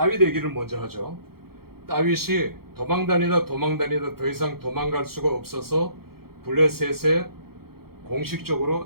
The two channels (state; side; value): late; left; 0.94 ms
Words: 얘기를 먼저 하죠. 다윗이 도망다니다 더 이상 도망갈 수가 없어서 블레셋에